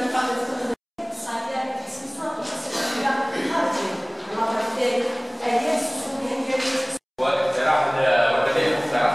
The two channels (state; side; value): identical; both; correlation 1.00